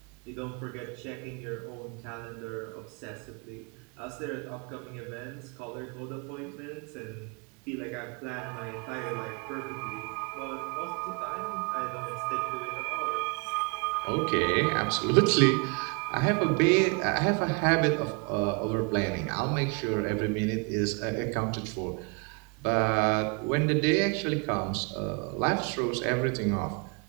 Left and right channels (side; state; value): left; quieter; 32.2 dB